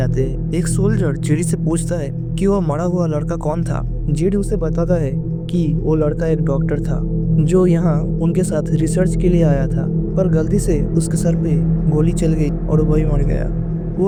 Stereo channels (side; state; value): both; identical; correlation 1.00